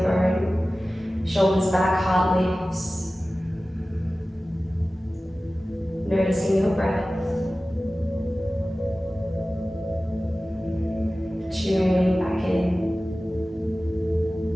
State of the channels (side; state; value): both; normal; correlation 0.96